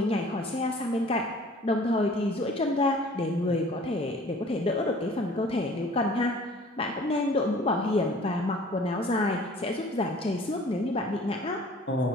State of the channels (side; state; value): both; normal; correlation 0.50